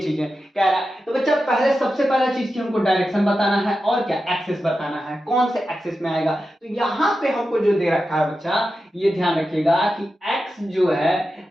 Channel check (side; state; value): both; normal; correlation 0.91